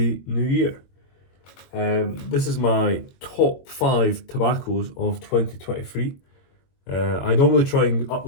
new year. This is my top 5 tobaccos of 2023. I normally try and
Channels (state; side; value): late; right; 22 ms